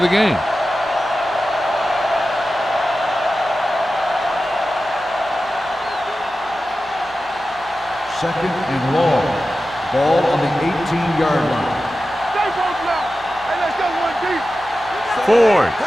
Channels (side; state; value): right; noise; hum, 26 dB below the sound